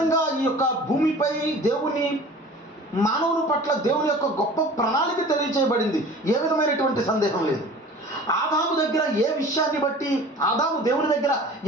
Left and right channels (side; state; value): both; normal; correlation 0.43